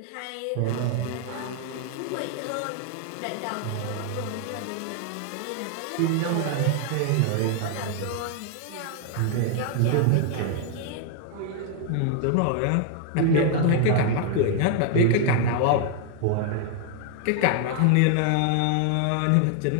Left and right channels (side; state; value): both; different; correlation 0.00